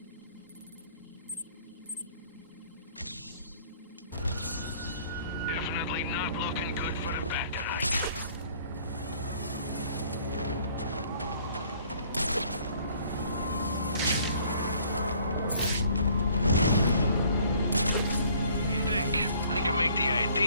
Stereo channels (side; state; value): both; inverted; correlation -0.57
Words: Definitely not looking good for the bad guys. I can make the